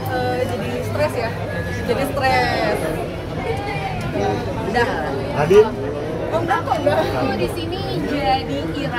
jadi stres ya. Jadi stres. Udah. Adit? Oh enggak kok enggak. Aku di sini jadi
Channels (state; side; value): identical; both; correlation 1.00